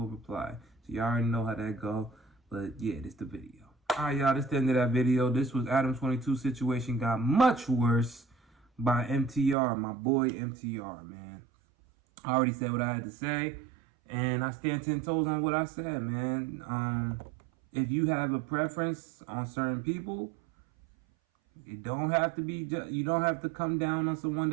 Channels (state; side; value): drops out; left; at 9.6 s